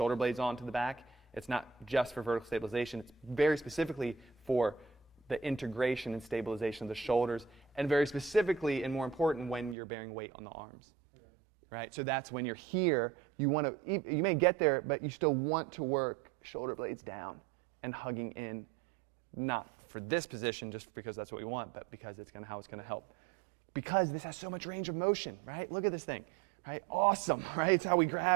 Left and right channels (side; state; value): left; drops out; at 9.8 s